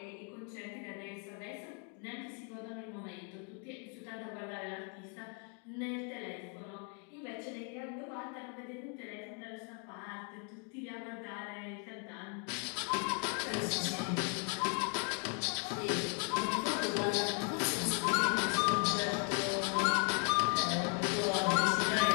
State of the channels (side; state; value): right; quieter; 39.8 dB